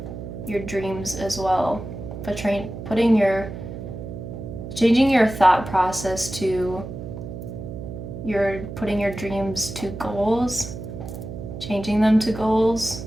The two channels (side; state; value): right; noise; hum, 9 dB below the sound